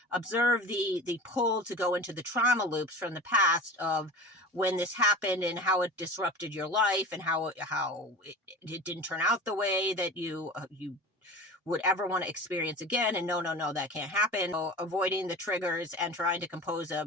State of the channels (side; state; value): both; normal; correlation 0.36